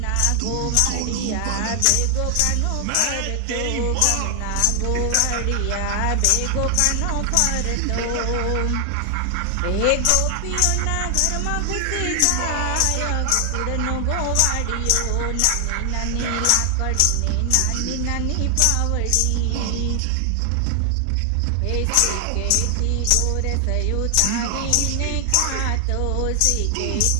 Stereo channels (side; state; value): both; different; correlation 0.00